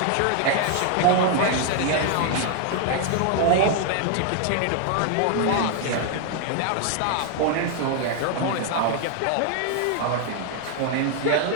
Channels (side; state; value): both; different; correlation 0.00